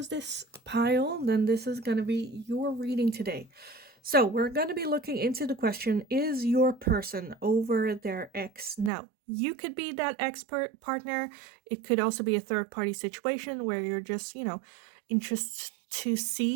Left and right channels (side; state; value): left; drops out; at 8.9 s